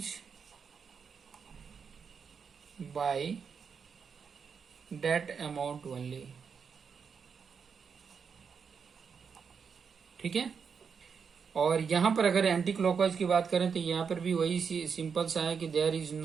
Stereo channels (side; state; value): left; quieter; 6.2 dB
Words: by that amount only, ठीक है। और यहां पर अगर एंटी क्लॉकवाइज की बात करें तो यहां पर भी वही सिंपल सा है कि there is